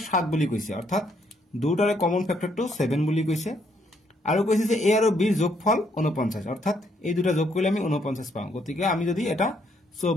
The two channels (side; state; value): both; normal; correlation 0.71